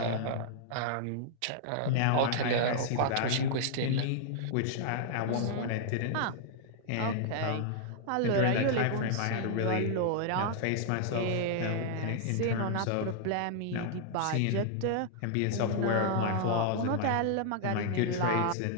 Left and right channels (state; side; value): different; both; correlation -0.01